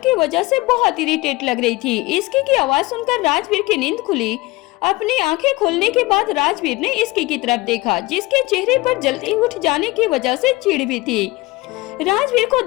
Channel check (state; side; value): quieter; right; 21.2 dB